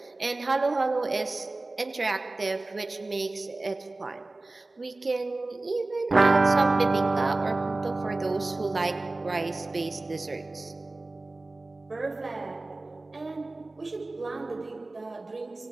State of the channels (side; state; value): left; quieter; 3.1 dB